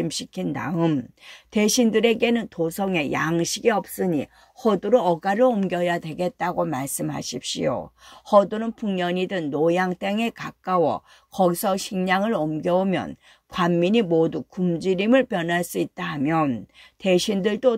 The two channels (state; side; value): identical; both; correlation 1.00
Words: 다음 대신들에게는 도성에 양식이 없으니 허도로 어가를 옮겨야 되겠다고 말씀하십시오. 허도는 풍년이든 노양 땅에 가까워 거기서 식량을 옮겨오면 관민이 모두 굶주림을 변할 수 있다 하면